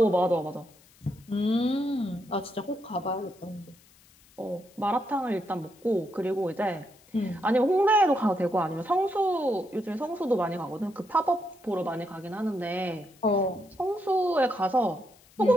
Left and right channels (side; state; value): left; noise; hiss, 28 dB below the sound